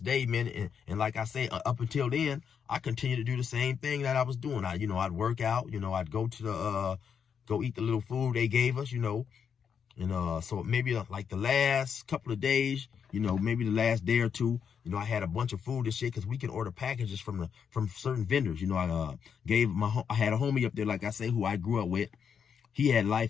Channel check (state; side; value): quieter; right; 7.2 dB